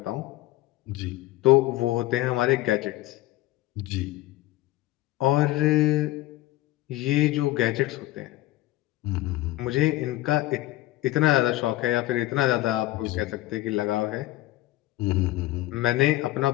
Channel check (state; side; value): quieter; right; 16.8 dB